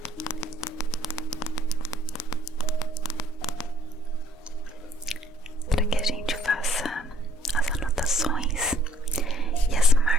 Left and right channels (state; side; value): normal; both; correlation 0.63